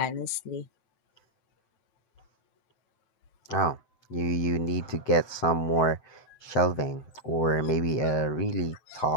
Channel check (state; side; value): late; right; 7.9 ms